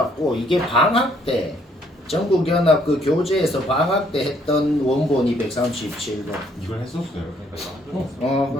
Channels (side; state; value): both; normal; correlation 0.66